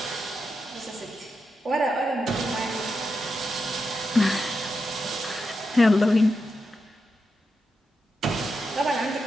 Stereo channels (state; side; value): normal; both; correlation 0.87